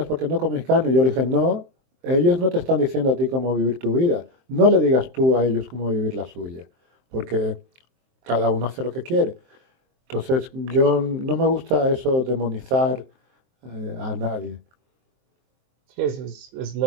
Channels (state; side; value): late; left; 23 ms